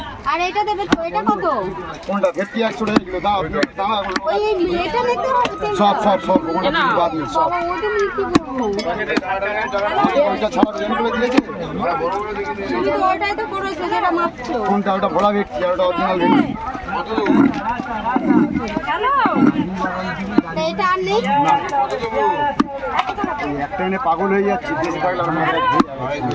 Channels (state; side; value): identical; both; correlation 1.00